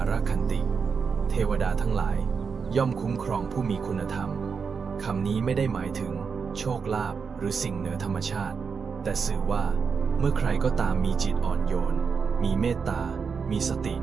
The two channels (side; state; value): left; quieter; 5.7 dB